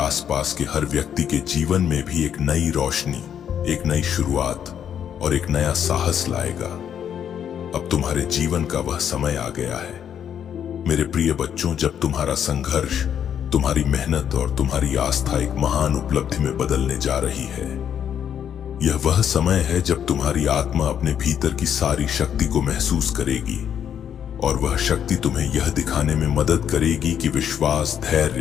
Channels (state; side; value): quieter; right; 8.9 dB